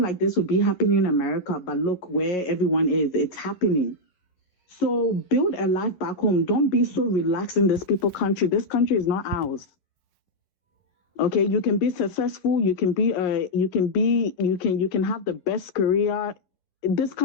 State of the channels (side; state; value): right; late; 11 ms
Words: like this would be happening in America, but look where everyone is. It's happening. So build a life back home. Don't be so relaxed in this people country. This country is not ours. Okay, you can be successful. You can have the best career. This